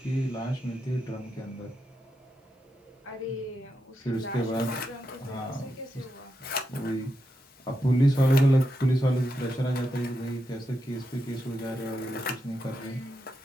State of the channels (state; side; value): normal; both; correlation 0.85